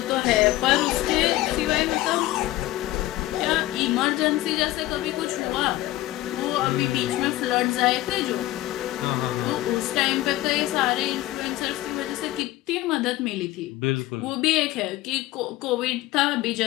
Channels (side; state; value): right; quieter; 16.5 dB